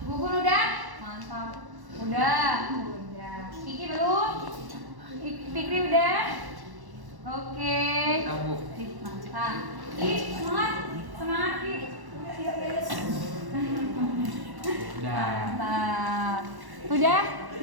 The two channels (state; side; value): late; left; 1.1 ms